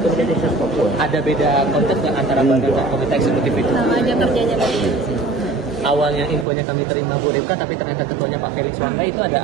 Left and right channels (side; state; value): left; drops out; at 6.5 s